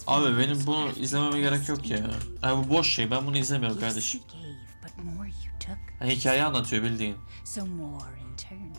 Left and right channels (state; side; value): inverted; both; correlation -1.00